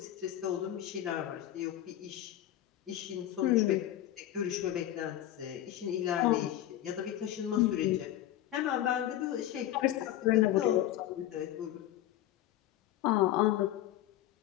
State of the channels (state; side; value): quieter; right; 13.0 dB